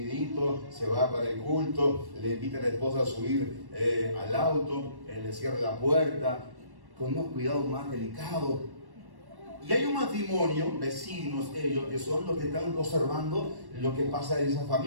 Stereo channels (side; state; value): left; late; 1.1 ms